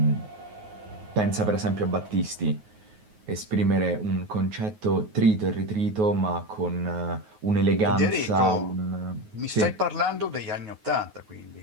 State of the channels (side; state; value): left; late; 9.4 ms